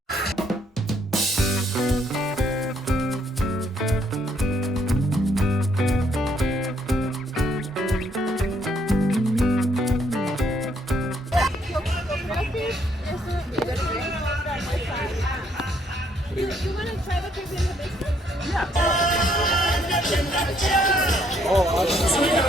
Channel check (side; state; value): both; normal; correlation 0.69